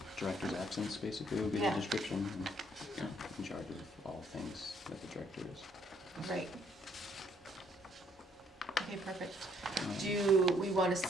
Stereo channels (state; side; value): normal; both; correlation 0.67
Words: director's absence, basically, would be the Yeah. description. And, yeah, in charge of all things that the director is. Right. Okay, perfect. Um, Do we wanna